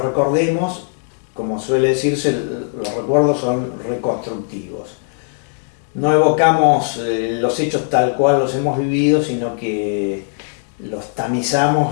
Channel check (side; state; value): right; silent; digital silence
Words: como suele decirse, los recuerdos son reconstructivos. No evocamos los hechos tal cual los hemos vivido, sino que los